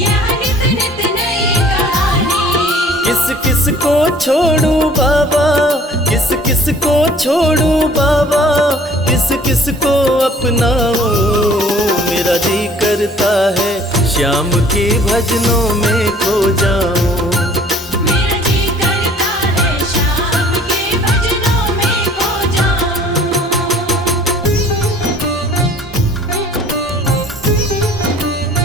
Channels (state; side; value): normal; both; correlation 0.53